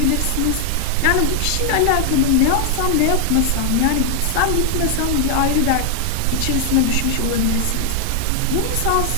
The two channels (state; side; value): different; both; correlation 0.00